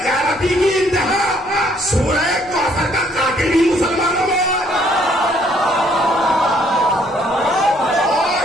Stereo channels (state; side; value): noise; left; rumble, 24 dB below the sound